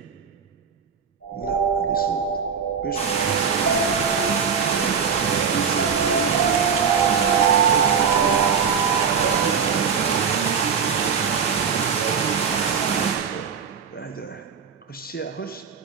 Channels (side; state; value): left; quieter; 6.5 dB